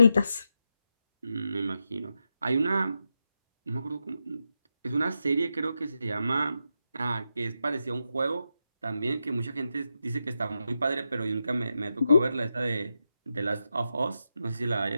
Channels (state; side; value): inverted; both; correlation -0.86